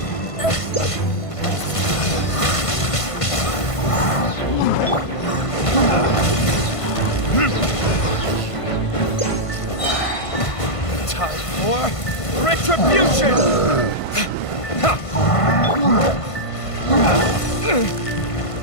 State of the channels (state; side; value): late; right; 1.5 ms